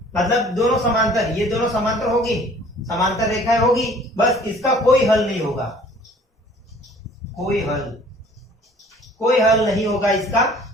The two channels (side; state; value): both; normal; correlation 0.52